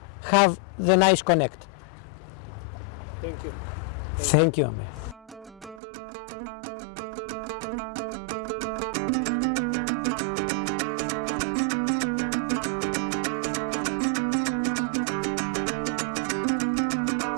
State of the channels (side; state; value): left; drops out; at 5.8 s